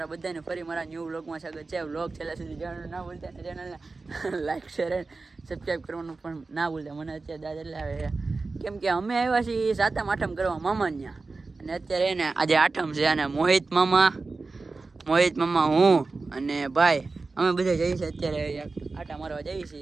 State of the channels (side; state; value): left; quieter; 3.8 dB